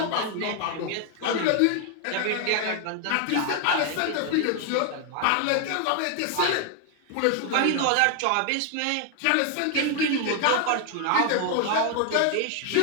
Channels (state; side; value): different; both; correlation 0.00